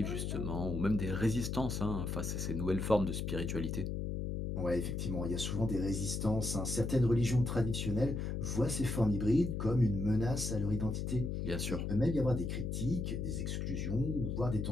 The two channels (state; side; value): noise; left; hum, 2 dB below the sound